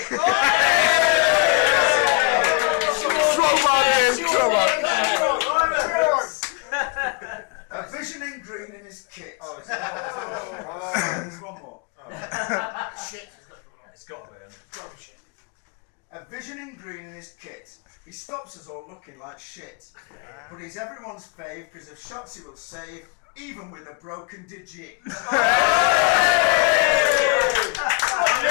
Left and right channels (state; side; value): quieter; right; 30.3 dB